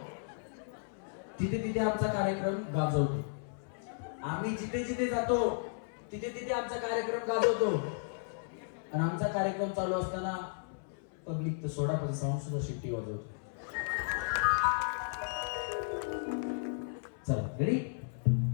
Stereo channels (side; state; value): right; silent; 55 dB below the other